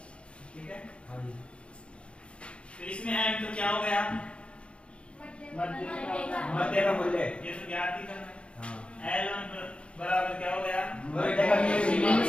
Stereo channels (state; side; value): late; right; 0.058 ms